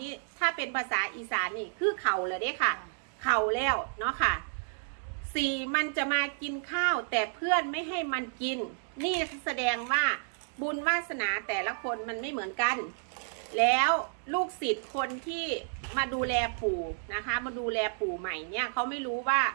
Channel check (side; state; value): left; silent; digital silence